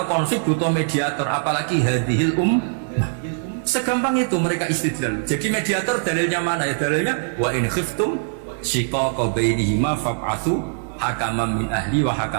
konflik butuh mediator, apalagi hadhil segampang itu mereka istidlal. Jadi mediator dalilnya mana ya? Dalilnya wa in khiftum shiqaqa bainihima fab'atsu hakaman min ahli wa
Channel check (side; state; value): left; silent; digital silence